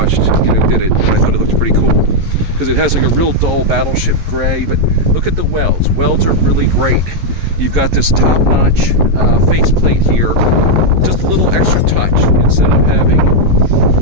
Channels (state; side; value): late; left; 11 ms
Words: you know, did it, and I thought it looked pretty cool because it has like a real dull battleship gray. But look at the welds. Welds are really great. You've got this top-notch faceplate here, just a little extra touch instead of having